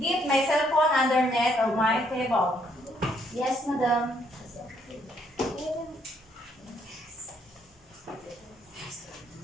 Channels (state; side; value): normal; both; correlation 0.70